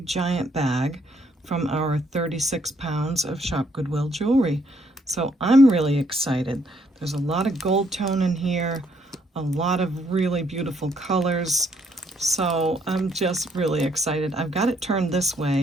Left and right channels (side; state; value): both; normal; correlation 0.70